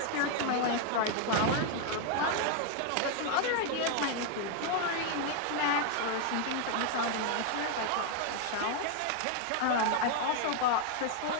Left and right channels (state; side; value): different; both; correlation 0.00